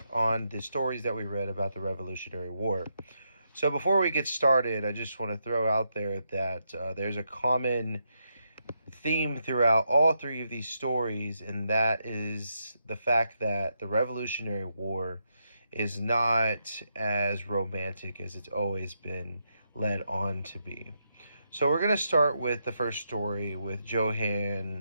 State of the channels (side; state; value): both; inverted; correlation -0.82